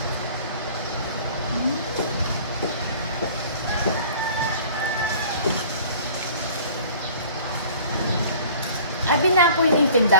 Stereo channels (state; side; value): inverted; both; correlation -0.47